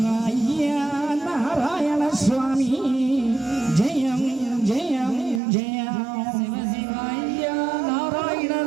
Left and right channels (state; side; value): drops out; left; at 5.4 s